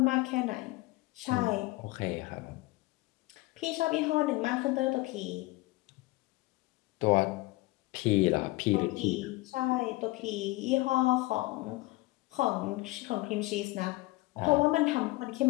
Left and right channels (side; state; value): right; quieter; 20.9 dB